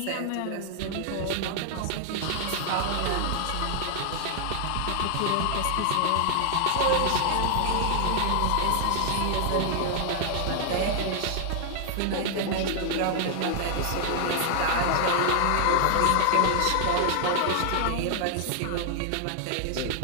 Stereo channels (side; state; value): both; different; correlation 0.00